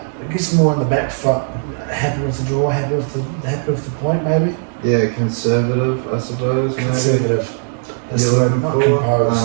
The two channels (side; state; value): left; silent; digital silence